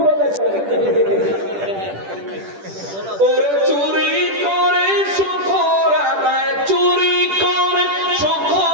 আদায় করে, ওরে চুরি করে শকর আদায়, চুরি করে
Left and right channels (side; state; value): left; late; 10 ms